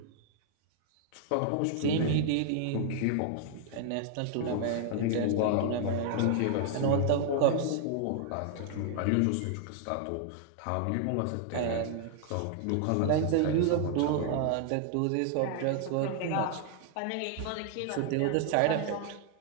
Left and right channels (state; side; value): different; both; correlation 0.00